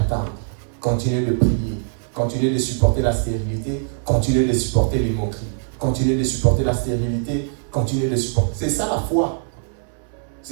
continue de prier, continue de supporter la stérilité, continue de supporter les moqueries, continue de supporter la stérilité, continue de supporter. C'est ça la foi.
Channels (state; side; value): silent; left; digital silence